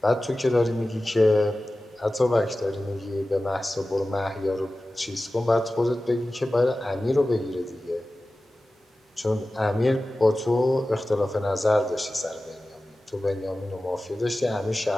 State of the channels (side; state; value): both; normal; correlation 0.96